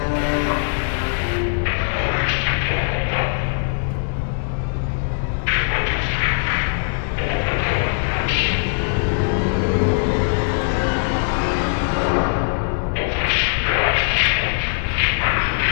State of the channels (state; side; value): silent; right; digital silence